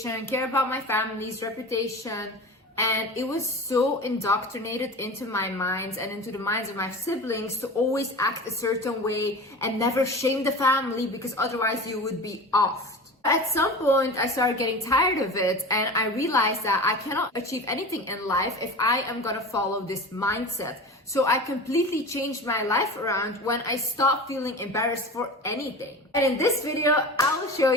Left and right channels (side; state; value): both; normal; correlation 0.32